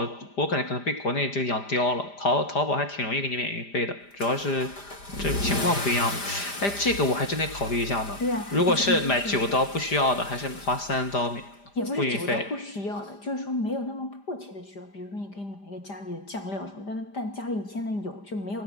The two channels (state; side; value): late; right; 5.0 ms